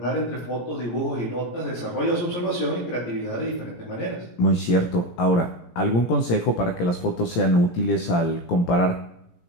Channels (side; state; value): right; late; 17 ms